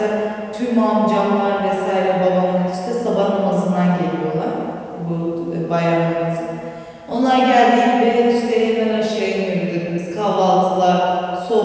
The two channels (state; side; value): identical; both; correlation 1.00